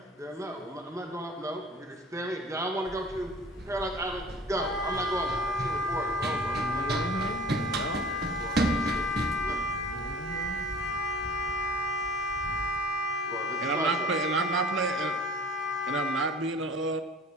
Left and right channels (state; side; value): normal; both; correlation 0.44